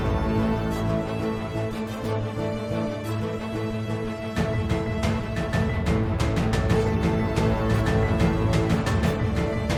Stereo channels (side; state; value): both; identical; correlation 1.00